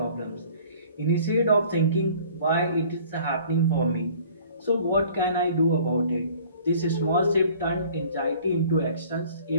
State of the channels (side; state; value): both; inverted; correlation -0.51